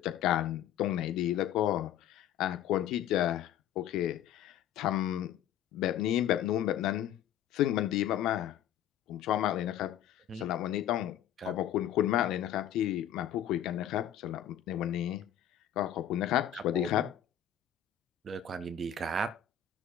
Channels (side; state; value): right; quieter; 10.3 dB